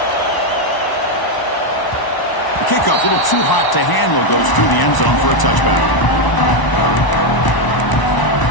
The kickoff, a little too hot to handle, goes through the end zone for a touchback.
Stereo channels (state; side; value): late; right; 1.0 ms